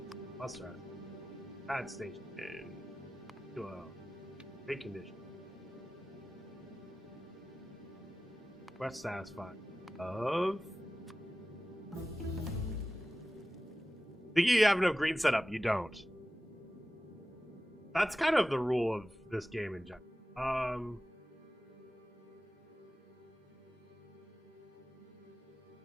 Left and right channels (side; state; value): both; normal; correlation 0.95